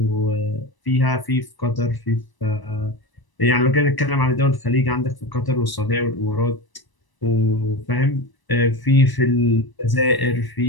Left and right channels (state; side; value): late; right; 1.0 ms